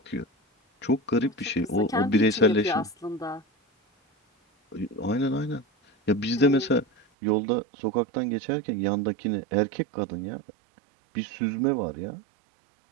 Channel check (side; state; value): left; drops out; at 7.1 s